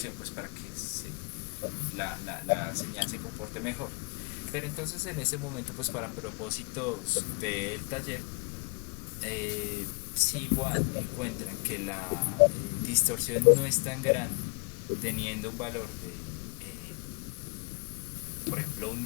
pues para que la señal se comporte mejor. Pero entonces en ese momento, pues para propósitos del taller, si igual encuentran que la distorsión no es tan grande, teniendo un valor de, por ejemplo, 1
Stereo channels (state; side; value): quieter; right; 35.6 dB